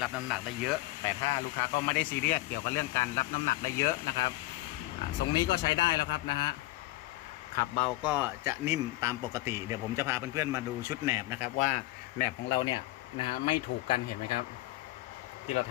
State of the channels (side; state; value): right; quieter; 18.4 dB